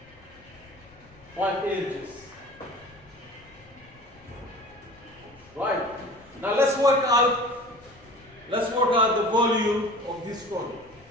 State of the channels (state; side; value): noise; left; rumble, 26 dB below the sound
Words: 5 inches. Right. Now let's work out the volume of this cone.